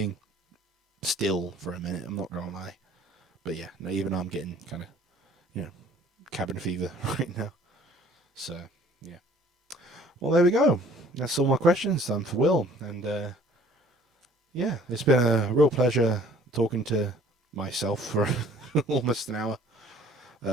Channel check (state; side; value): normal; both; correlation 0.54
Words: still for a minute. I'm not gonna lie, but yeah, no, even though I'm getting kind of cabin fever right now. So yeah. Well, there we go. That's all my questions done for Will, and it's been a real pleasure talking to myself for almost an hour.